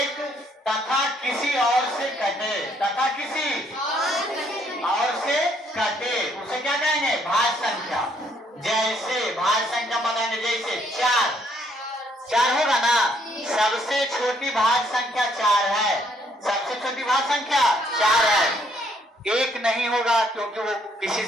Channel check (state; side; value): normal; both; correlation 0.68